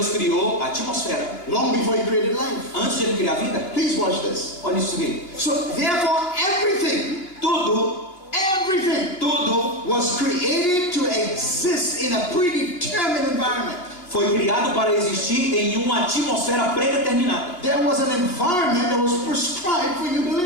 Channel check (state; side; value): late; right; 2.7 ms